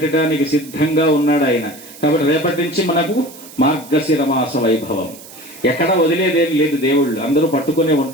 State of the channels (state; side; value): noise; right; hiss, 18 dB below the sound